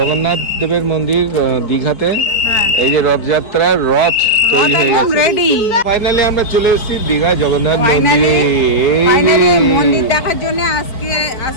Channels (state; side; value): late; right; 4.5 ms